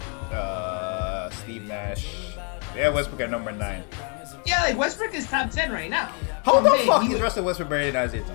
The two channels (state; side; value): quieter; right; 36.9 dB